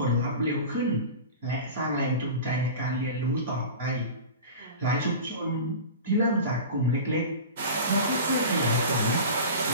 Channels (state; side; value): inverted; both; correlation -0.33